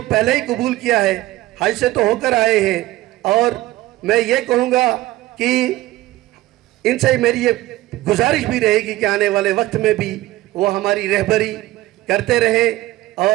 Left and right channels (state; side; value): quieter; left; 16.9 dB